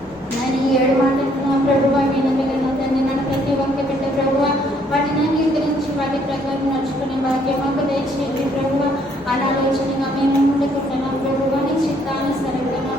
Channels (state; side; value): normal; both; correlation 0.66